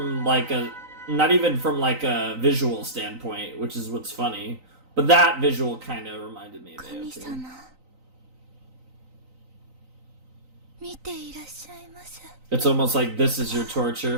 like a, not even from like a visual standpoint, which is what's funny. But that visual kind of reminded me of AOT. It's almost like this is your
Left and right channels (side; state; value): left; late; 3.9 ms